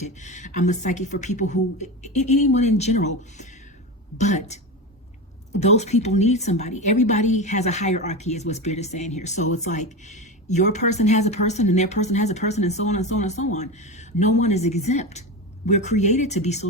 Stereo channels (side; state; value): both; normal; correlation 0.21